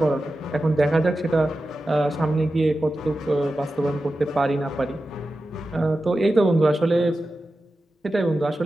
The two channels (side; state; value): both; normal; correlation 0.93